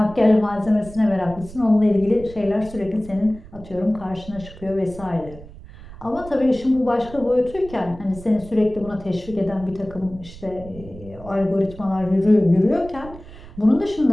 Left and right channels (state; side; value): noise; right; rumble, 17 dB below the sound